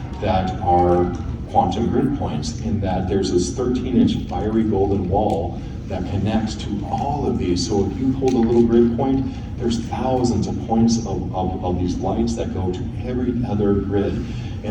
that are quantum grid points, in that there's this 13-inch fiery golden wall that connects to all of these. So if you hold a little grid point, there's thousands of points of these lights that go to every other grid.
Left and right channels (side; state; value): both; identical; correlation 1.00